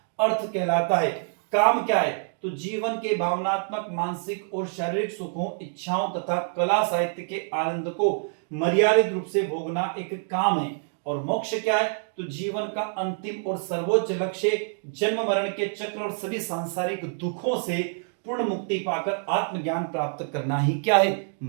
अर्थ कहलाता है। काम क्या है तो जीवन के भावनात्मक, मानसिक और शारीरिक सुखों, इच्छाओं तथा कला साहित्य के आनंद को मर्यादित रूप से भोगना एक काम है। और मोक्ष क्या है तो जीवन का अंतिम और सर्वोच्च लक्ष्य जन्म मरण के चक्र और सभी सांसारिक दुखों से पूर्ण मुक्ति पाकर आत्मज्ञान प्राप्त करना ही क्या है,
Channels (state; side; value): silent; left; digital silence